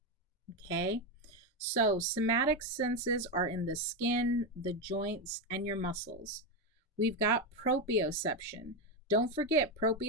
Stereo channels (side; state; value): both; normal; correlation 0.10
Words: Okay? So, somatic senses are in the skin, the joints, and your muscles. We've got proprioception. Don't forget,